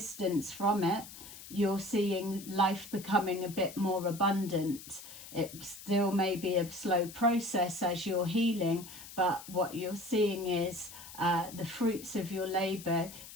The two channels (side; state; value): left; noise; hiss, 15 dB below the sound